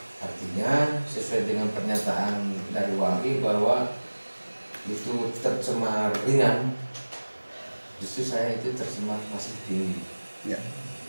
Artinya sesuai dengan pernyataan dari Wali bahwa itu tercemar ringan, justru saya itu tercemar masih tinggi.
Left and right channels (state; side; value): inverted; both; correlation -1.00